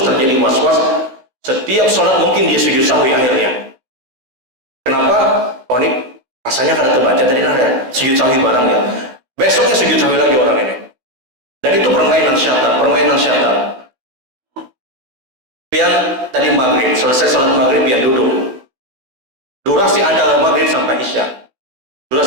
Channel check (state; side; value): late; left; 16 ms